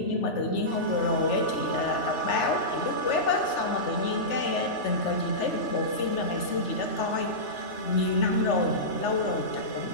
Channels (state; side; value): late; right; 3.4 ms